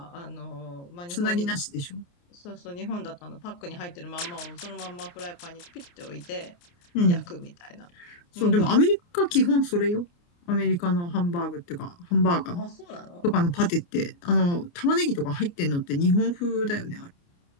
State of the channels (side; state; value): right; late; 29 ms